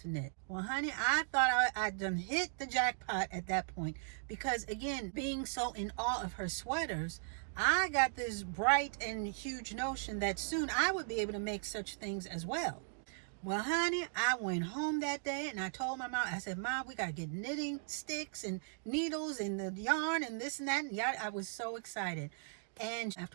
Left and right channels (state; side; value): silent; left; digital silence